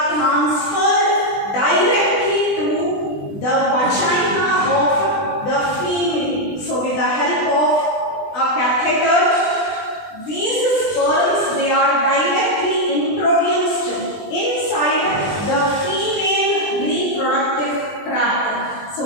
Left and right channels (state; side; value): late; right; 20 ms